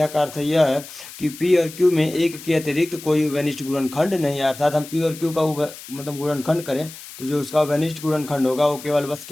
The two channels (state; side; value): noise; left; hiss, 15 dB below the sound